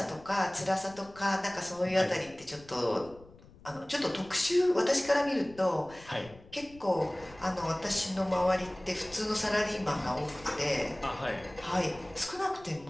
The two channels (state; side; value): noise; left; rumble, 22 dB below the sound